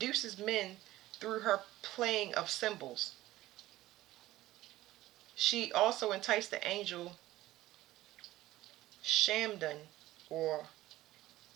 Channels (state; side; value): quieter; left; 16.1 dB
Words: men through her playing of symbols. She also enticed the angel Shamdan, or